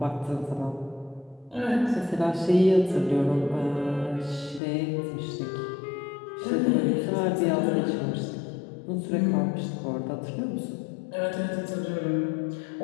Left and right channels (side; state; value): right; drops out; at 4.6 s